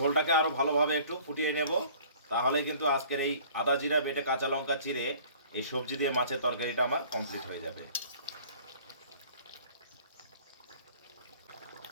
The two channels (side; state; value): both; inverted; correlation -0.51